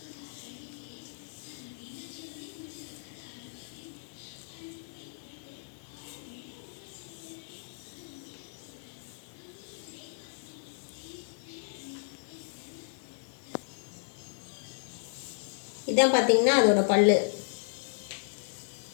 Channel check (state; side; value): silent; right; digital silence